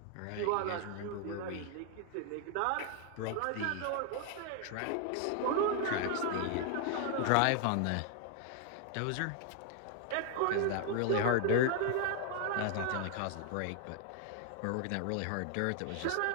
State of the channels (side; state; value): both; different; correlation 0.00